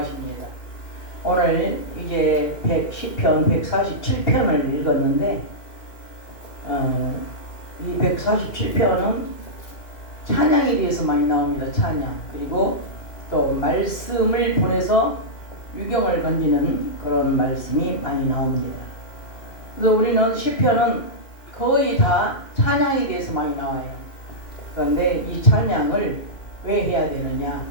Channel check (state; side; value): late; right; 2.4 ms